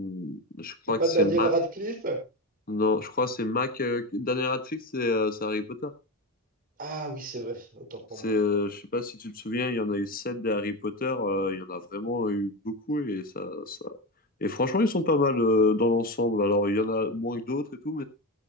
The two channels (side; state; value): both; normal; correlation 0.18